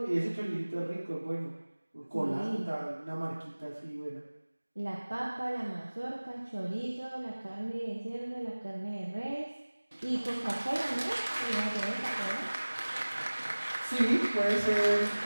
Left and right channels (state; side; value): inverted; both; correlation -1.00